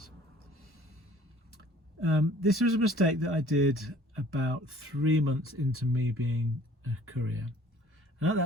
This was a mistake that I did about 3 months into me being a courier, and at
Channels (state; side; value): normal; both; correlation 0.53